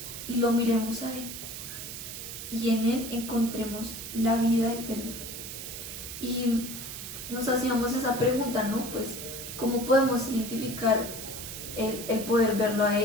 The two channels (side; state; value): right; noise; hiss, 9 dB below the sound